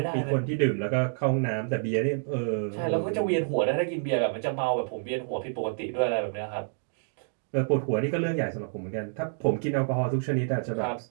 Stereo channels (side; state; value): left; silent; digital silence